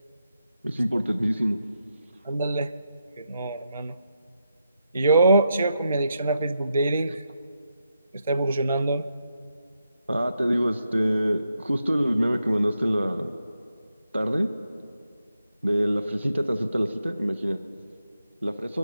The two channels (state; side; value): inverted; both; correlation -0.83